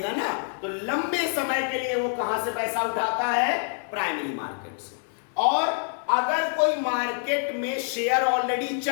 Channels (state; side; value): silent; right; 61 dB below the other